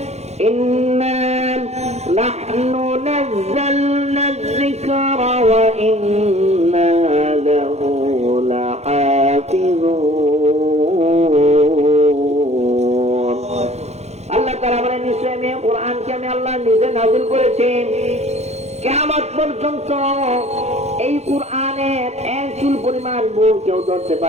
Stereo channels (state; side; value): late; left; 0.31 ms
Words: ইন্না নাহনু নাযালনা যিকরা ওয়া ইন্না লাহু লাহাফিজুন। আল্লাহ তাআলা বলেন, নিশ্চয় আমি কোরআনকে আমি আল্লাহ নিজে নাযিল করেছি। কিয়ামত পর্যন্ত এই কোরআনের এক চুল পরিমাণ ভুল কেউ ধরতে